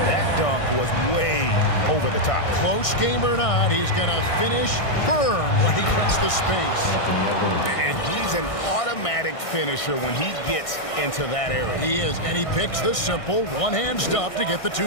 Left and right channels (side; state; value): right; late; 1.6 ms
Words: That dunk was way over the top. Close game or not, he's going to finish firm when he gets the space. And he's an automatic finisher when he gets into that area. He is, and he picks the simple one-hand stuff to get the